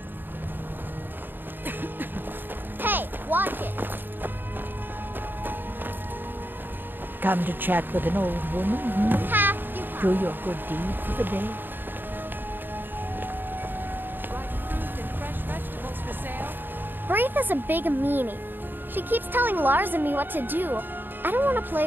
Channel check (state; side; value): late; left; 0.094 ms